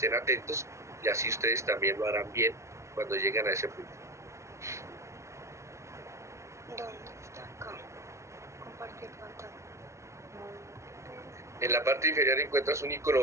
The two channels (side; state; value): left; late; 0.14 ms